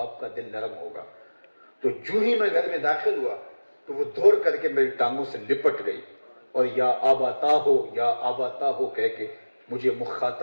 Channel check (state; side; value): inverted; both; correlation -1.00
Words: کا دل نرم ہوگا۔ تو جو ہی میں گھر میں داخل ہوا تو وہ دوڑ کر کے میری ٹانگوں سے لپٹ گئی اور یا آباتا ہو کہہ کے مجھے